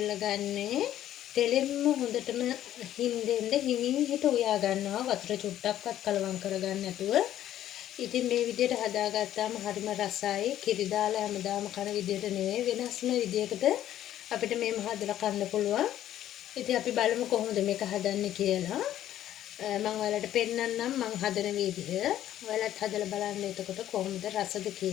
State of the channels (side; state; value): right; quieter; 12.2 dB